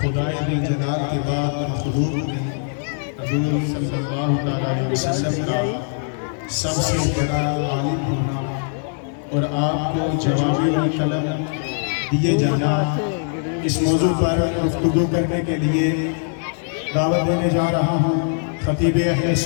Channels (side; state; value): right; silent; 65 dB below the other